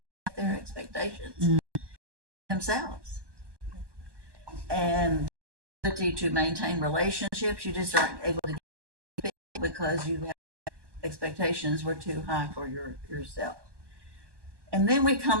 expectations themselves, and the ability to maintain relationships. You just aren't able to get people because you have expectations were too high for yourself. And then we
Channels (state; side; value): late; left; 1.2 ms